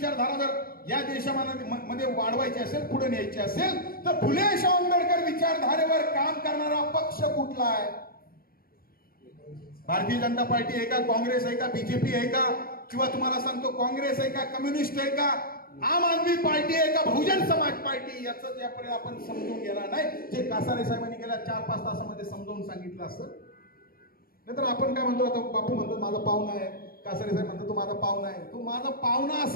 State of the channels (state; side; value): late; right; 0.43 ms